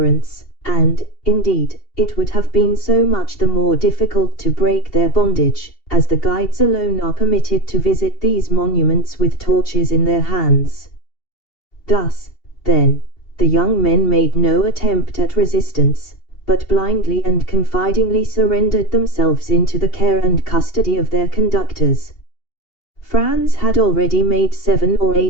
and, indeed, it would have been so much the more difficult to break their bondage, as the guides alone are permitted to visit these monuments with torches in their hands. Thus, then, the young men made no attempt at resistance, but blindly and confidingly surrendered themselves into the care and custody of their conductors. Franz had already made 7 or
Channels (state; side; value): late; right; 2.8 ms